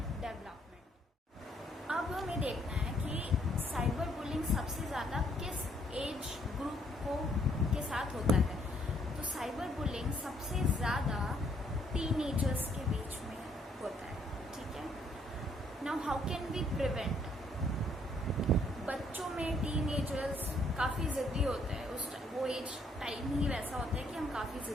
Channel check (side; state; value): both; normal; correlation 0.68